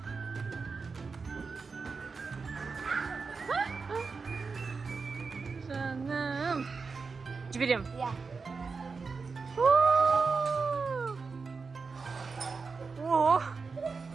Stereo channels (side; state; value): left; quieter; 4.7 dB